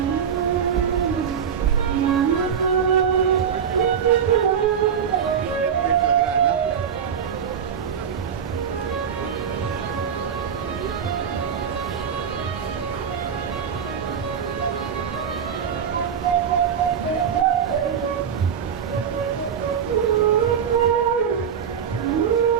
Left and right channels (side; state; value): left; quieter; 7.7 dB